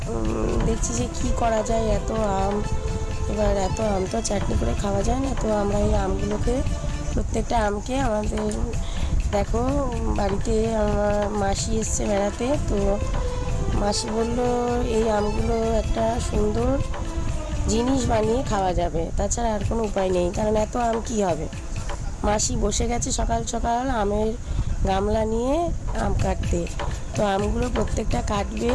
দেখছি যে কি করা যায়। এত আম, এবার এত আম তো চাটনি করে খাওয়া যায় না। তো আমরা এই আমগুলোকে, প্রত্যেকটা আমকে আমাদের, দেখো বাড়িতে আমার মাসি এসছে বেড়াতে। তো মাসি বলল এই আমগুলো একটা সুন্দর জিনিস বানিয়ে খাওয়া যাবে, তাছাড়া আর কোনো উপায় নেই। কারণ এত আম কী হবে। মাসি বসে গেছে সকাল সকাল আমের গামলা নিয়ে আম কাটতে। তো আমগুলো প্রত্যেকটা কাটবে,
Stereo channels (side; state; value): both; identical; correlation 1.00